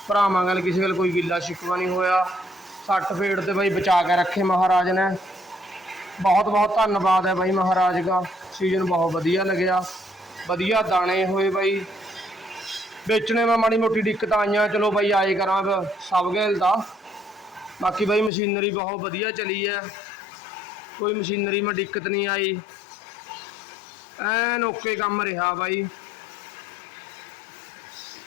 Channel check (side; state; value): right; drops out; at 18.3 s